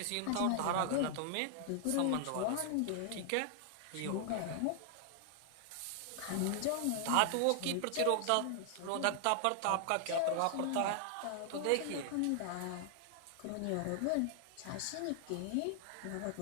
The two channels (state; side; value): different; both; correlation 0.00